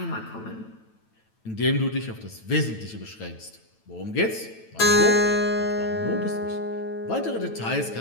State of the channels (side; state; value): right; late; 9.1 ms